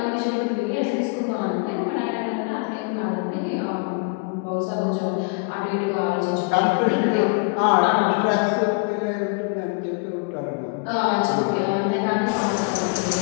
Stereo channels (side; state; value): right; quieter; 35.4 dB